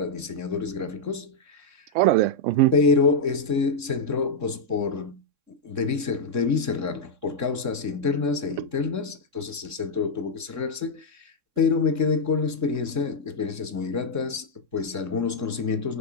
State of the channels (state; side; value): late; left; 3.6 ms